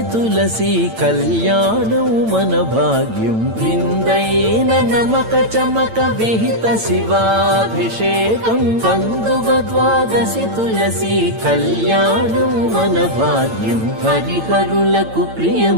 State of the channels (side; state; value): left; late; 8.9 ms